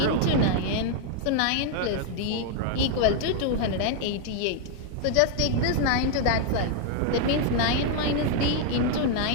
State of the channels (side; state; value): both; different; correlation 0.00